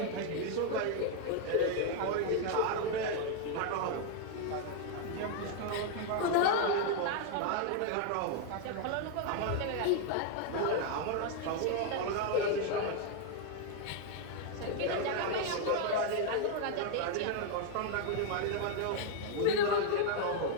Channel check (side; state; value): both; different; correlation 0.00